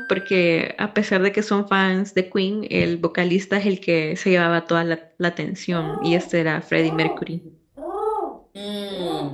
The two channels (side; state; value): both; identical; correlation 1.00